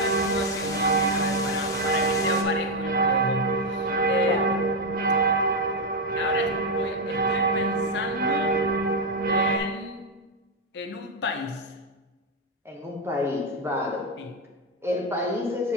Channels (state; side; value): normal; both; correlation 0.05